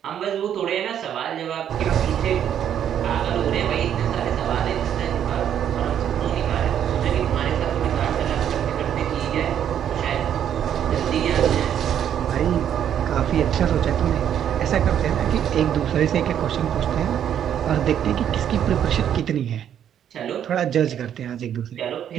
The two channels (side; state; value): left; quieter; 9.6 dB